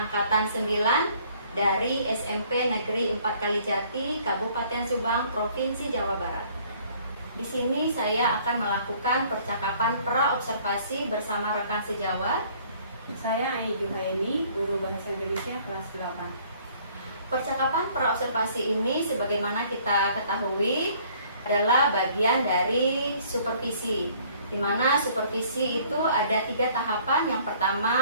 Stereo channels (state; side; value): inverted; both; correlation -0.58